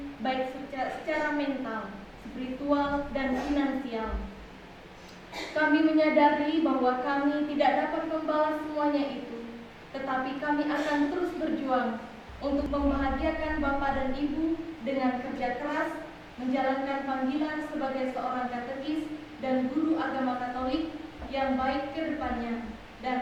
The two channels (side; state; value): both; identical; correlation 1.00